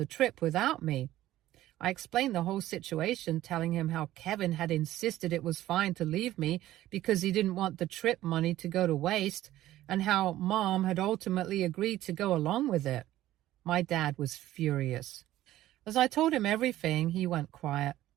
trip without me. I explained the whole situation, telling him how Kevin had insisted it was fine to leave me because he didn't want the trip money to go to waste, and how Mom had ultimately agreed to go along with it. My dad was furious. As I told him everything, he went quiet,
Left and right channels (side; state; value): left; quieter; 14.5 dB